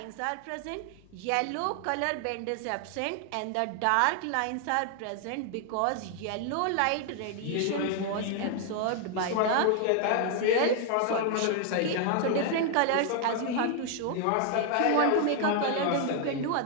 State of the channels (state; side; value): different; both; correlation 0.00